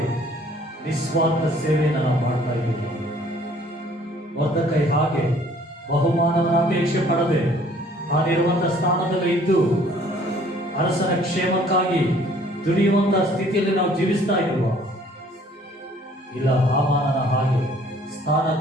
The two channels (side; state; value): both; normal; correlation 0.57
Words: ನಿಸ್ವಾರ್ಥ ಸೇವೆಯನ್ನು ನಾವು ಮಾಡ್ತಾ ಇದ್ದೀವಿ. ಮೊರ್ದೆಕೈ ಹಾಗೆ ಬಹುಮಾನವನ್ನು ಅಪೇಕ್ಷೆ ಪಡದೆ ತಾನಿರುವಂತಹ ಸ್ಥಾನದಲ್ಲಿ ಇದ್ದು ಅರಸನ ಕ್ಷೇಮಕ್ಕಾಗಿ ದುಡಿಯುವಂತಹ ಸ್ಥಿತಿಯಲ್ಲಿ ನಾವು ಜೀವಿಸ್ತಾ ಇರುವ? ಇಲ್ಲ, ಹಾಮಾನನ ಹಾಗೆ